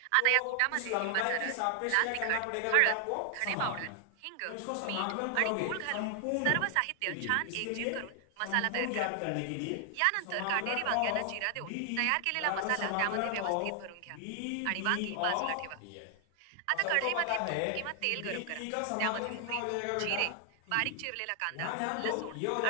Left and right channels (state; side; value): different; both; correlation 0.00